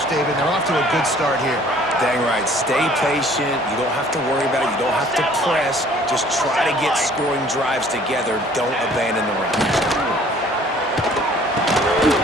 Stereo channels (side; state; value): both; normal; correlation 0.55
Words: David. They're off to a good start here. Dang right. Stay patient. You don't have to worry about it. You don't have to press. Just try to get scoring drives together. Don't abandon the run.